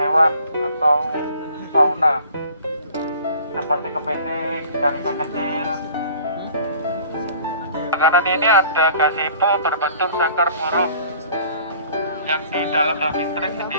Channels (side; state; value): both; inverted; correlation -0.50